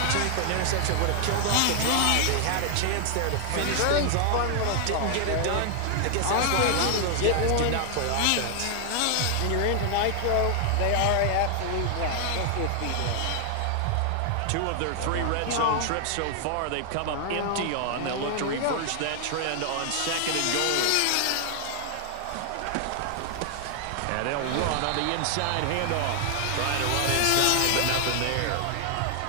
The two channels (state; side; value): different; both; correlation 0.00